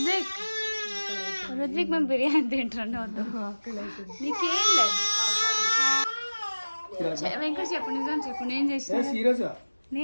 రుద్విక్ మేము బిర్యానీ తింటున్నాం. నీకేం లేదు. వెంకట చెప్పు, నిజం చెప్పు. నేను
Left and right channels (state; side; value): inverted; both; correlation -1.00